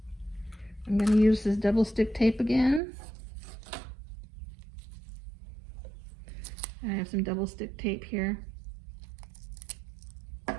I'm going to use this double stick tape again. I have some double stick tape here.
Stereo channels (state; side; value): drops out; left; at 2.8 s